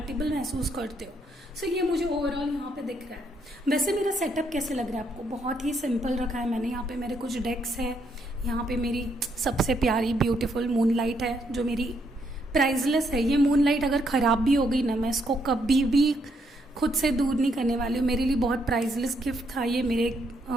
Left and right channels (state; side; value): normal; both; correlation 0.74